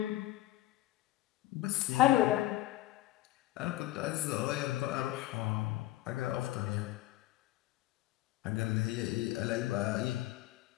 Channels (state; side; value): quieter; right; 15.9 dB